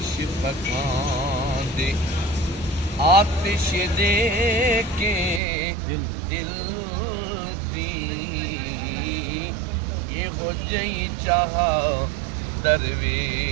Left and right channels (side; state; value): left; drops out; at 5.4 s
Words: पकाते आतिश दे के दिल दी ये हो जई जहाँ